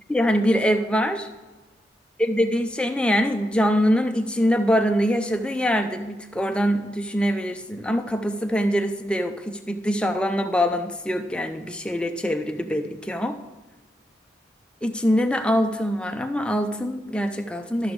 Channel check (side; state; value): both; normal; correlation 0.85